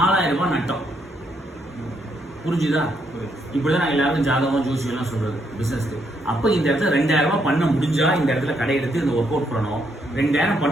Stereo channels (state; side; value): normal; both; correlation 0.75